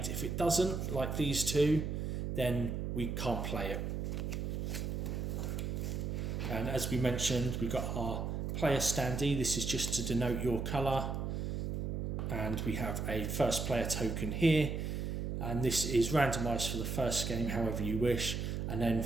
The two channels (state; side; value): noise; right; hum, 2 dB below the sound